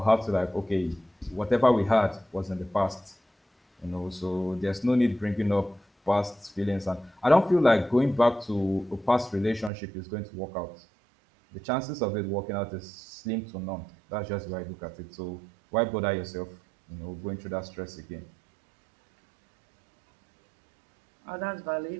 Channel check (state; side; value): drops out; left; at 9.7 s